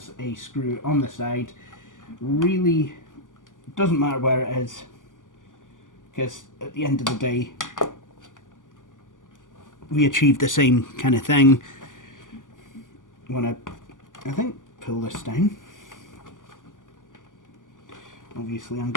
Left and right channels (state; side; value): late; right; 0.88 ms